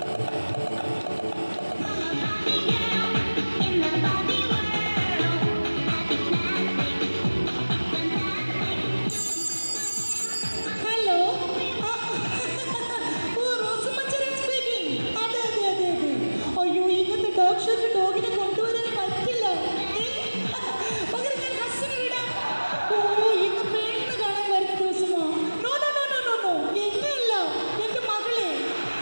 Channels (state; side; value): inverted; both; correlation -1.00